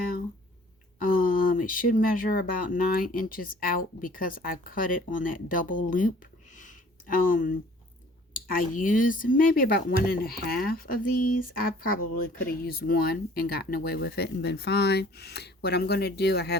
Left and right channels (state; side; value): normal; both; correlation 0.53